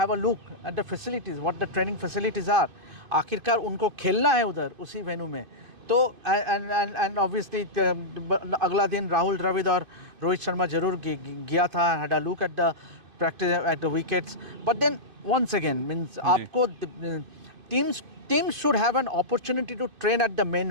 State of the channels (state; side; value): late; left; 2.5 ms